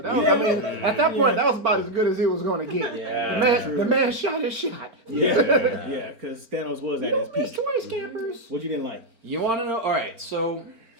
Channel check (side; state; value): left; late; 4.4 ms